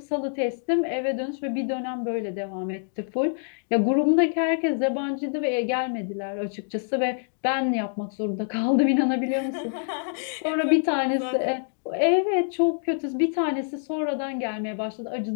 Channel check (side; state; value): right; silent; digital silence